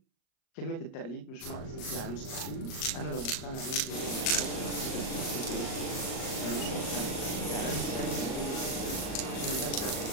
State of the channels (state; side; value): late; right; 38 ms